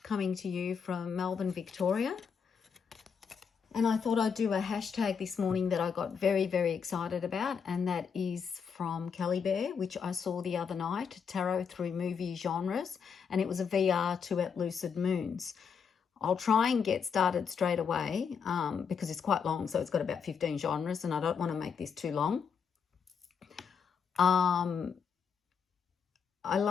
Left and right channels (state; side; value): quieter; right; 6.6 dB